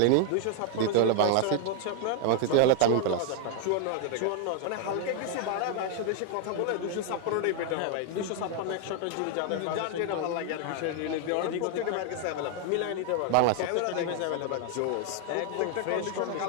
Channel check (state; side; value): different; both; correlation 0.00